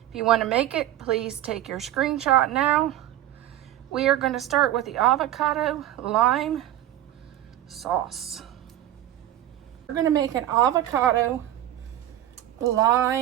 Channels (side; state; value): left; quieter; 12.9 dB